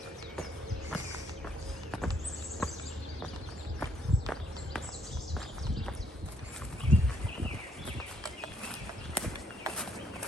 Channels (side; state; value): both; normal; correlation 0.69